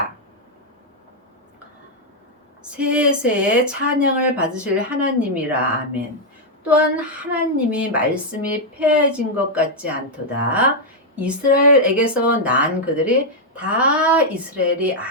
세세의 찬양을 받으실 하나님이라. 아멘. 또한 하나님이 말씀이 폐해진 것 같지 않도다. 이스라엘에게서 난 그들이 다 이스라엘이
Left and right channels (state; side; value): normal; both; correlation -0.02